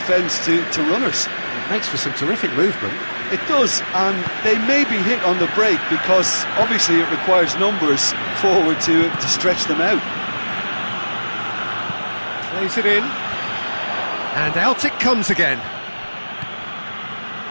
to runners. It makes for some terrific movement. It does, and they may be hit on the break because obviously it requires numbers forward to stretch them out. Plays it in, and out it comes again.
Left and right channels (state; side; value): inverted; both; correlation -1.00